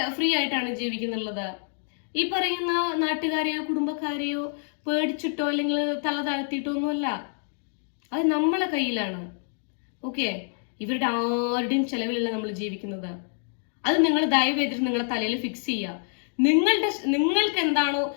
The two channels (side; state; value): right; silent; 60 dB below the other